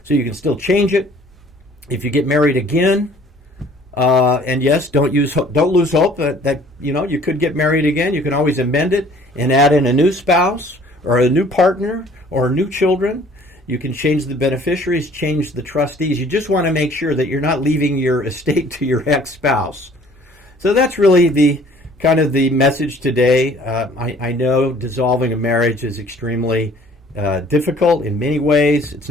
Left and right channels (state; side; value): normal; both; correlation 0.54